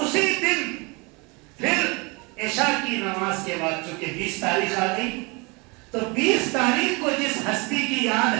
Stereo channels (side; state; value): left; quieter; 28.2 dB